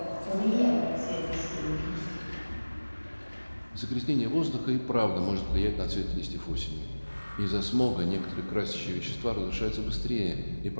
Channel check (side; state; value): both; inverted; correlation -1.00